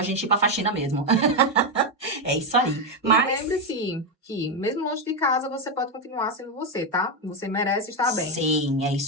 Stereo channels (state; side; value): normal; both; correlation 0.07